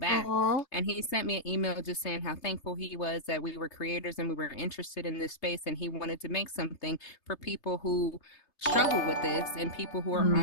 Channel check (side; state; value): right; late; 3.3 ms